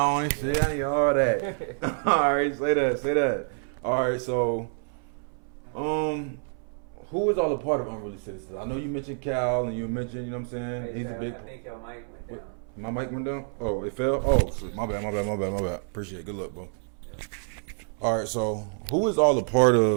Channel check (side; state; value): left; silent; 60 dB below the other